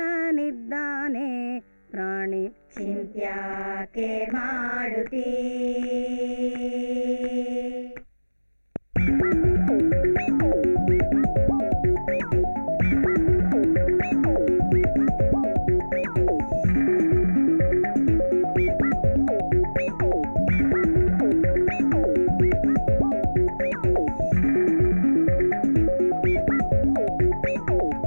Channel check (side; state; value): both; inverted; correlation -1.00